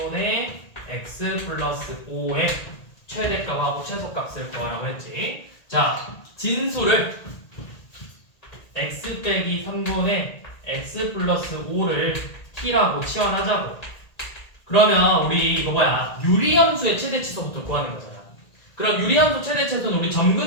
x 플러스 5의 최대값하고 최소값을 구하라고 했지. 자, 진수를 x 빼기 3분의 x 플러스 5를 t라고 치환하자고. 그러면 우리 이거 유리함수의 최대치수부터 구하는 거잖아. 그럼 유리함수 최대치수는 우리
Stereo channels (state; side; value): late; right; 1.8 ms